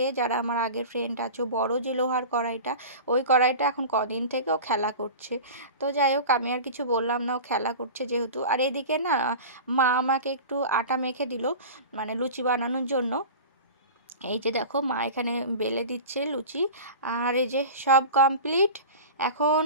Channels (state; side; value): inverted; both; correlation -0.33